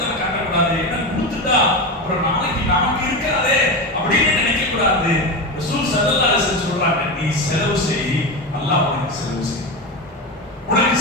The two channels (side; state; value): both; normal; correlation 0.19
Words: காட்டக்கூடாது. என்ன கொடுத்துட்டா அப்புறம் நாளைக்கு நமக்கு இருக்காதே அப்படின்னு நினைக்க கூடாது. ரசூல் ஸல்லல்லாஹு அலைஹி வஸல்லம் சொல்றாங்க, நீ செலவு செய், அல்லாஹ் உனக்கு செலவு செய்யும். உனக்கு